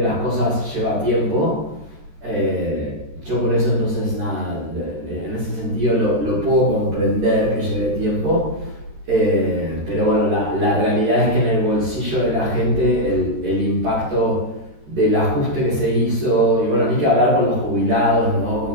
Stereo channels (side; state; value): left; late; 13 ms